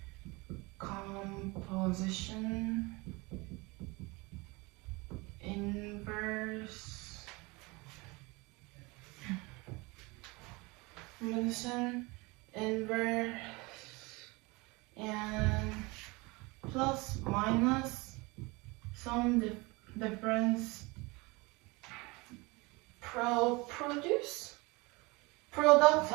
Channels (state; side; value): quieter; left; 25.3 dB